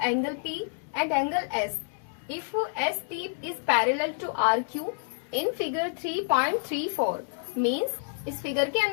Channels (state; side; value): silent; right; digital silence